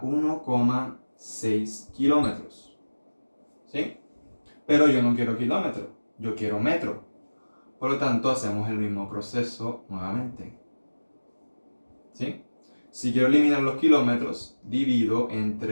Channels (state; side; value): inverted; both; correlation -1.00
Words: 1,6 kilómetros, ¿sí? Pero yo no quiero kilómetro, yo quiero metro. Por lo tanto, hacemos el mismo proceso nuevamente, ¿sí? Si quiero eliminar los kilómetros, divido